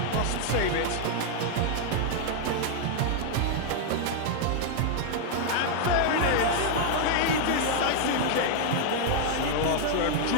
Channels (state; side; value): different; both; correlation 0.00